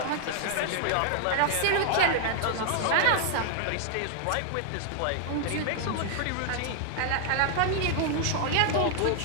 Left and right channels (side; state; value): both; different; correlation 0.00